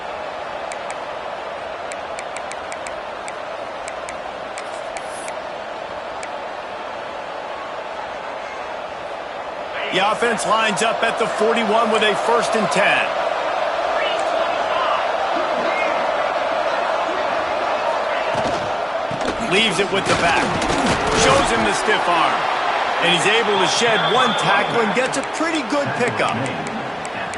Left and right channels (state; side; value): identical; both; correlation 1.00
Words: The offense lines up at the 41 with a 1st and 10. Leaves it with the back. Shows him the stiff arm. And he's able to shed one tackle and gets a pretty good pickup.